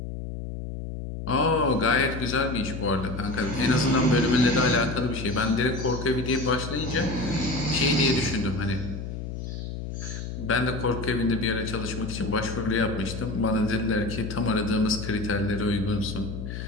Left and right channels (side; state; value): left; noise; hum, 7 dB below the sound